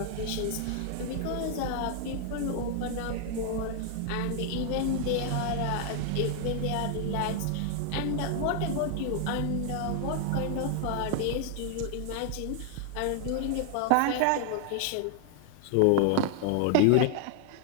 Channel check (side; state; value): both; different; correlation 0.00